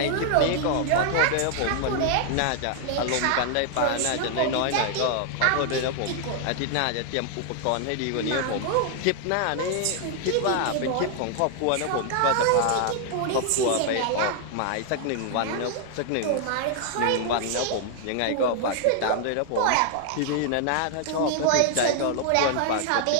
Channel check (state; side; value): different; both; correlation 0.00